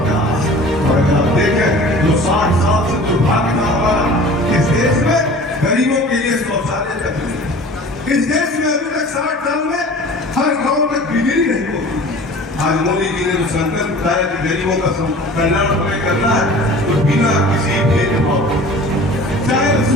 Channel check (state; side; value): normal; both; correlation 0.43